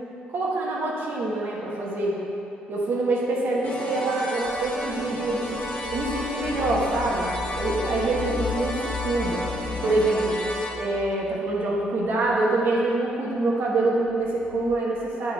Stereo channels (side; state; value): both; normal; correlation 0.72